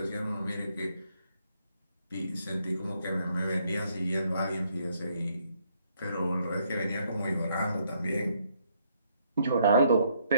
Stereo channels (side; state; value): both; inverted; correlation -0.71